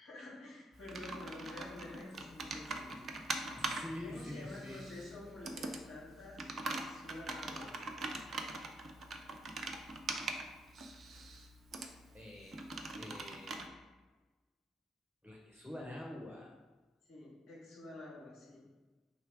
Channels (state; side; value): normal; both; correlation 0.75